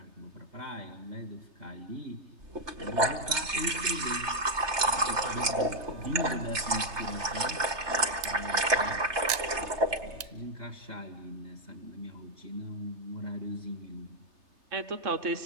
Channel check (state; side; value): late; left; 3.3 ms